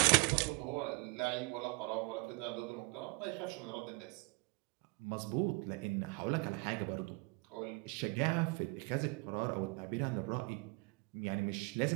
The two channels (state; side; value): quieter; left; 27.5 dB